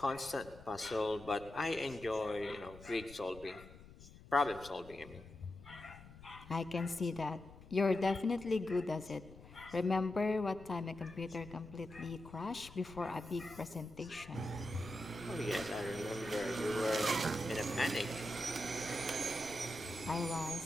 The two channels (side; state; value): left; noise; rumble, 18 dB below the sound